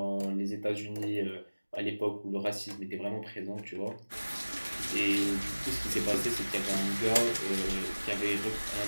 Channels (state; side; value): inverted; both; correlation -1.00